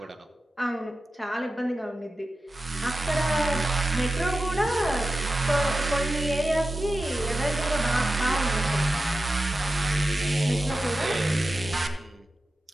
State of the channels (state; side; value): normal; both; correlation 0.93